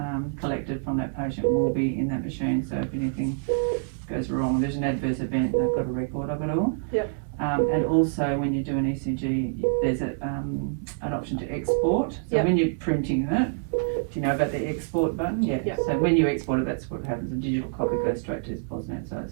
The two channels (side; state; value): left; silent; digital silence